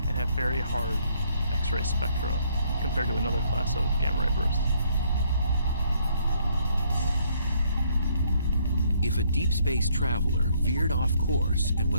have very hard X-ray spectra compared to another class of gamma ray bursts. If a deep space traveler veered off course and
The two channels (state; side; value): inverted; both; correlation -0.67